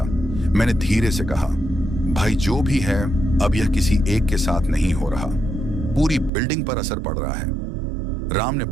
मैंने धीरे से कहा, भाई जो भी है अब यह किसी एक के साथ नहीं हो रहा, पूरी बिल्डिंग पर असर पड़ रहा है। राम ने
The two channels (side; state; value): left; drops out; at 6.3 s